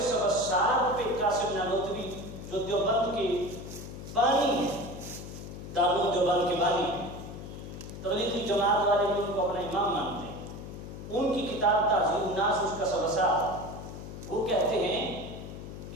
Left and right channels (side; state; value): left; noise; hum, 11 dB below the sound